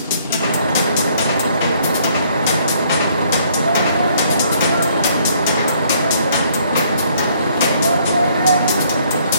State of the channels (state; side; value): inverted; both; correlation -0.64